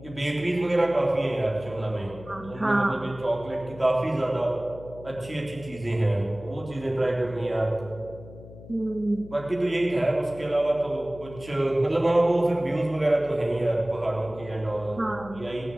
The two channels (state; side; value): noise; left; hum, 17 dB below the sound